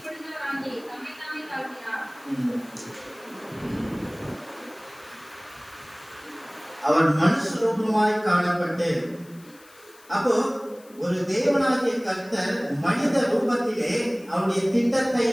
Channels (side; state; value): left; noise; hiss, 25 dB below the sound